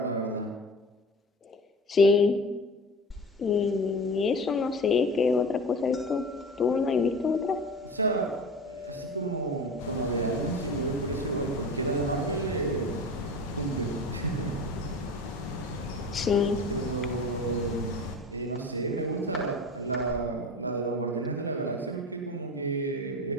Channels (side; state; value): both; normal; correlation 0.33